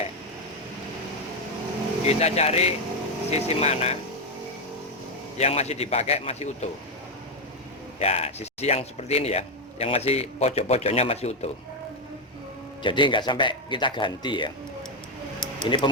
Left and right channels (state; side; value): normal; both; correlation 0.06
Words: Kita cari sisi mana yang masih dipakai, masih utuh. Ya, sisi yang seperti ini ya, yang masih pojok-pojoknya masih utuh. Jadi nggak sampai kita ganti ya. Ini